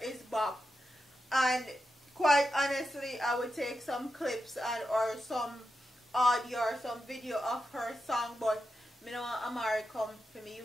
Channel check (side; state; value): both; normal; correlation 0.88